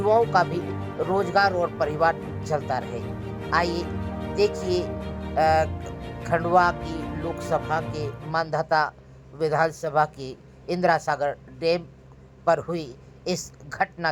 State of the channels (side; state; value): both; identical; correlation 1.00